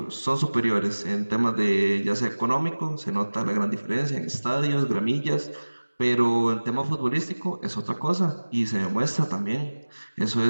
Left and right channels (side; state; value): both; inverted; correlation -1.00